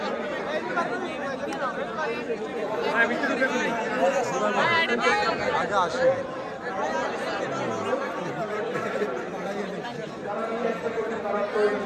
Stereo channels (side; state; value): both; identical; correlation 1.00